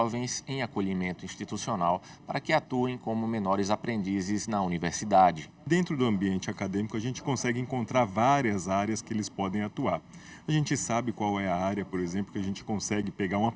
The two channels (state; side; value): identical; both; correlation 1.00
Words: em acolhimento institucional para que atuem como menores aprendizes na universidade. Dentro do ambiente acadêmico, a gente consegue encontrar várias áreas que eles podem atuar. A gente sabe qual é a área, por exemplo, que a gente consegue pegar uma